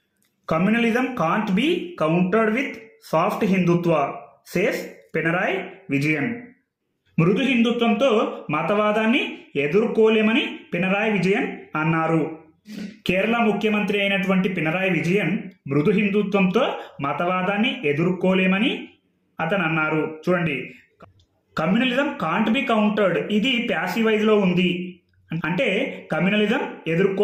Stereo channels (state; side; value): identical; both; correlation 1.00